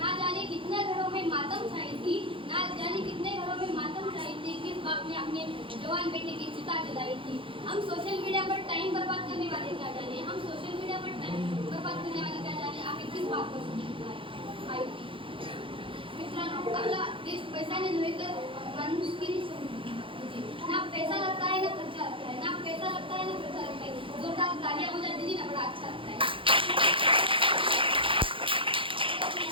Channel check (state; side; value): late; left; 0.25 ms